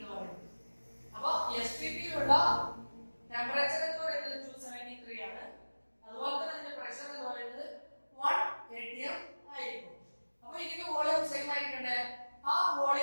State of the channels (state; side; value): inverted; both; correlation -1.00